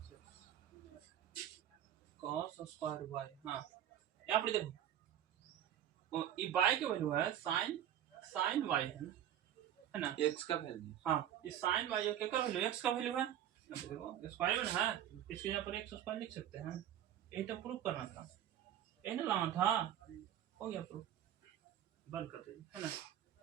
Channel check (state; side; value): quieter; left; 10.9 dB